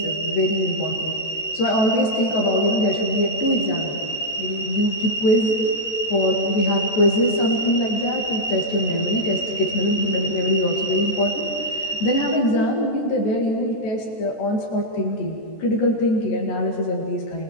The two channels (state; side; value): late; right; 13 ms